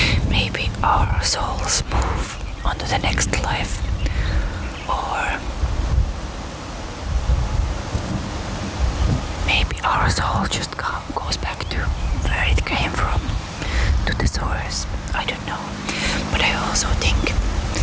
Maybe our souls move on to the next life, or maybe our soul just goes back to where it came from, to the source. I don't know. But I also think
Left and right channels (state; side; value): identical; both; correlation 1.00